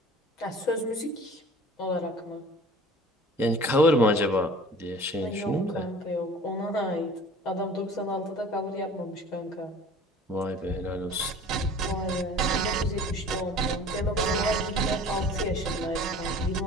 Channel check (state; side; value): normal; both; correlation 0.45